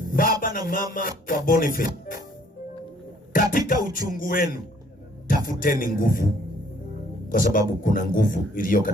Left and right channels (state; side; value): normal; both; correlation 0.61